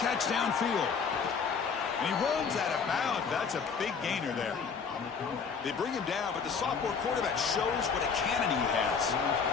downfield. And he runs out of bounds. That's a big gainer there. They bring him down, but the sophomore quarterback shows what a cannon he has.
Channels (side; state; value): right; quieter; 5.8 dB